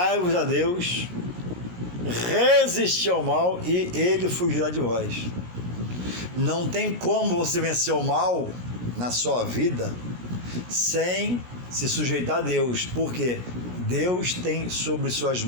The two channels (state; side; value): late; left; 17 ms